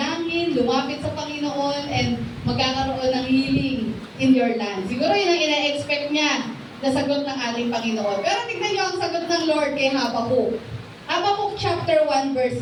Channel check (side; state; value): both; identical; correlation 1.00